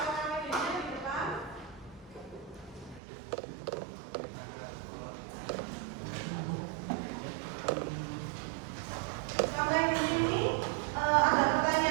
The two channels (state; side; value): drops out; left; at 3.0 s